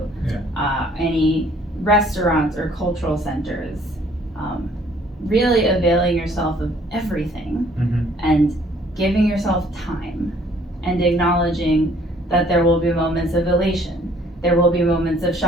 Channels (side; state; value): both; normal; correlation 0.60